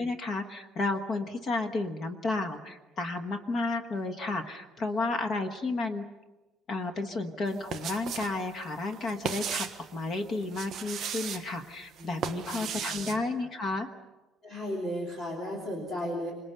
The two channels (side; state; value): both; normal; correlation 0.72